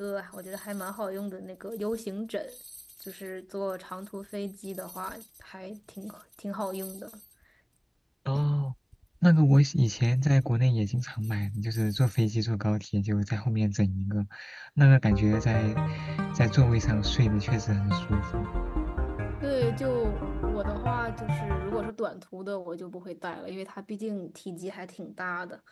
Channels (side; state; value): both; identical; correlation 1.00